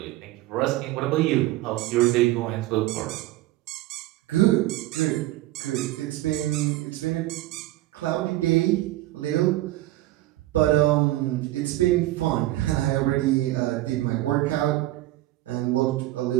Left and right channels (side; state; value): left; quieter; 16.6 dB